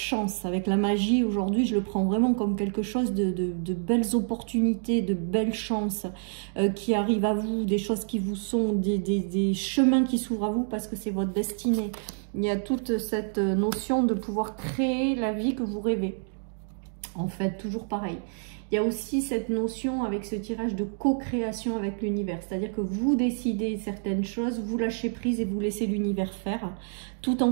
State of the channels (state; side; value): silent; left; digital silence